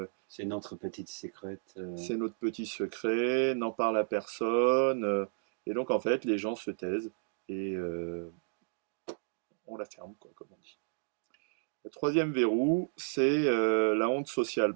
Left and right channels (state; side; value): silent; left; digital silence